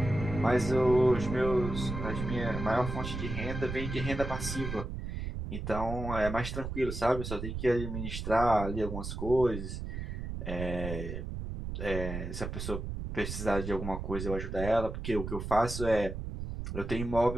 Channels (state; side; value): noise; right; rumble, 5 dB below the sound